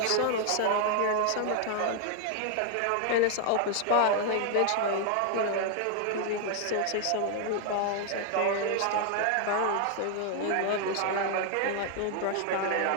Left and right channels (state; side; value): different; both; correlation 0.00